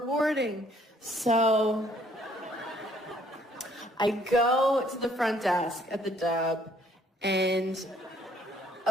So I go to the front desk at the Dub, and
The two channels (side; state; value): both; normal; correlation 0.63